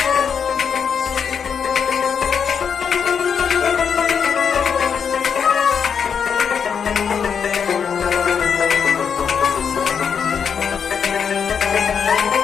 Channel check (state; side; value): quieter; right; 7.0 dB